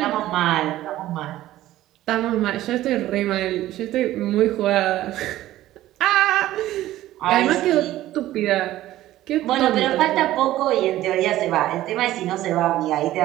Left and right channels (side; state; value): left; quieter; 14.8 dB